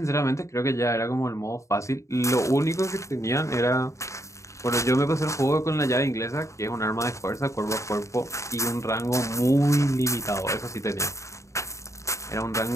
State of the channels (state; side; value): late; right; 0.15 ms